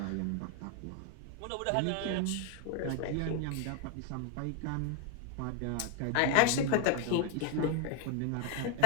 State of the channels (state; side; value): different; both; correlation 0.01